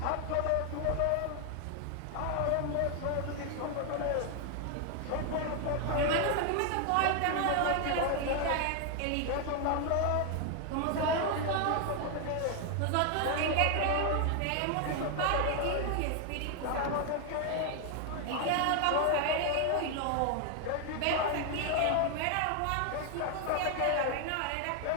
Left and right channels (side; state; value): both; different; correlation 0.01